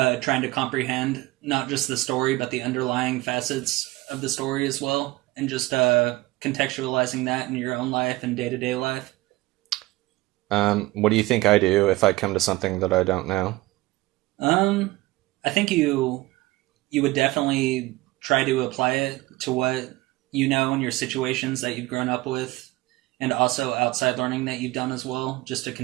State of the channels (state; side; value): quieter; left; 19.7 dB